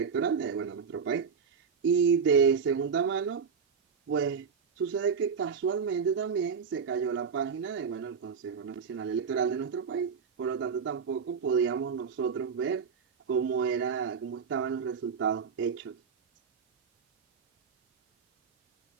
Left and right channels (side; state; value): left; quieter; 6.2 dB